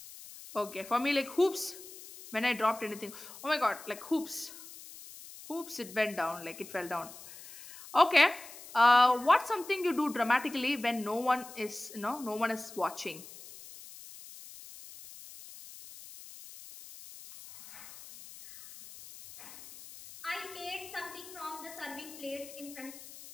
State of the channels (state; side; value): noise; left; hiss, 16 dB below the sound